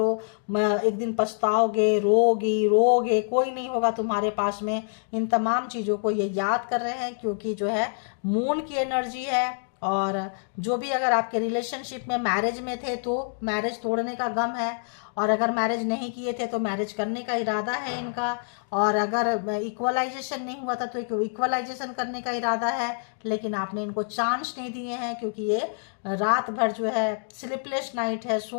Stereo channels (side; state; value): right; silent; digital silence